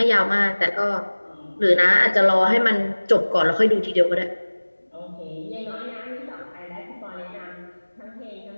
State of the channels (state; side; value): inverted; both; correlation -1.00